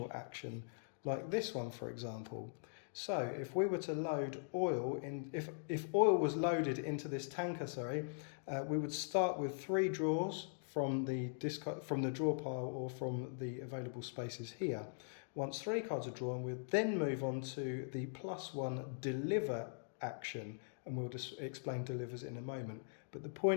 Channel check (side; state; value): right; silent; digital silence